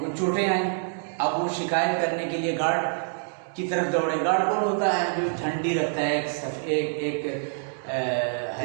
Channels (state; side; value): silent; left; digital silence